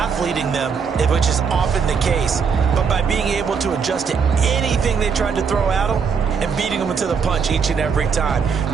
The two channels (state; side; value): quieter; left; 6.1 dB